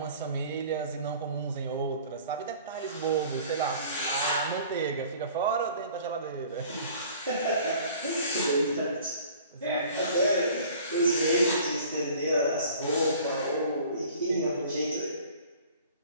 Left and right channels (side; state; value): both; inverted; correlation -0.49